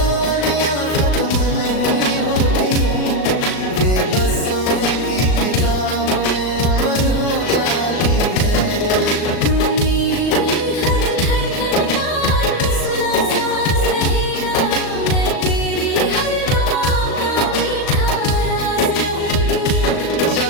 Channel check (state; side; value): late; right; 38 ms